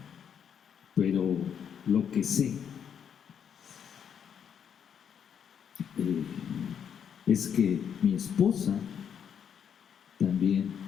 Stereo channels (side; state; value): right; quieter; 8.0 dB